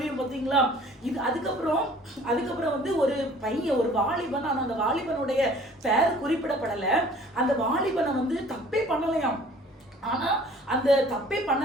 பார்த்தீங்களா? இது அதுக்கப்புறம் வந்து ஒரு பையன், ஒரு வாலிபன், ஆனா அந்த வாலிபனுடைய பெயர் குறிப்பிடப்படல. அந்த வாலிபனை வந்து தப்பே பண்ணலையாம். ஆனா அந்த தப்பே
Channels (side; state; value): both; normal; correlation 0.51